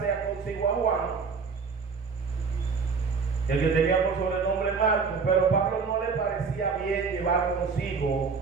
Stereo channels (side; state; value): left; quieter; 5.2 dB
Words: consigo a Juan, el que tenía por sobrenombre Marcos, pero Pablo no le parecía bien llevar consigo